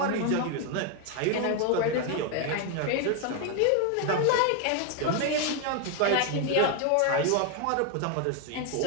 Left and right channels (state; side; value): different; both; correlation 0.01